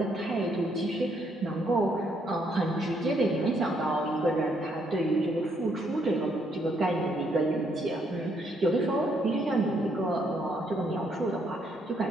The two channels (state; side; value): normal; both; correlation 0.72